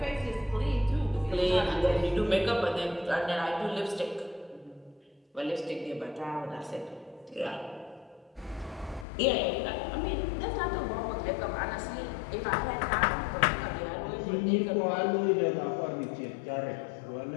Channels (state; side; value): drops out; right; at 9.1 s